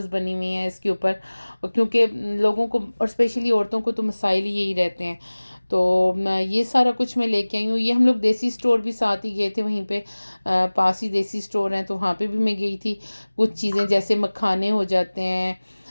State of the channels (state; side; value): inverted; both; correlation -1.00